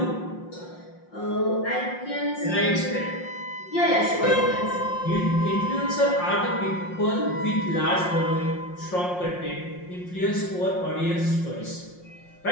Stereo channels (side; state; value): right; late; 5.6 ms